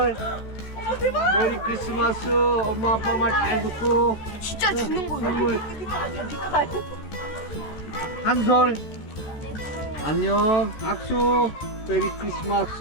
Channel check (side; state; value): right; late; 14 ms